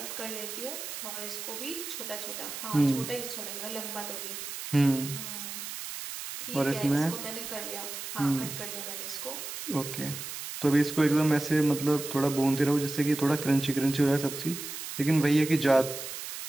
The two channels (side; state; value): right; noise; hiss, 8 dB below the sound